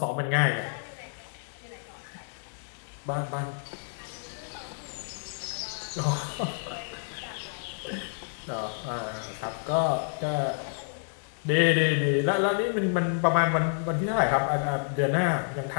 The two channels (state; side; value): silent; right; 58 dB below the other